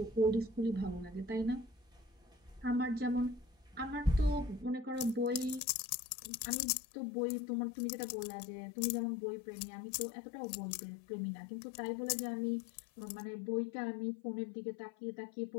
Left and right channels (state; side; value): drops out; right; at 5.6 s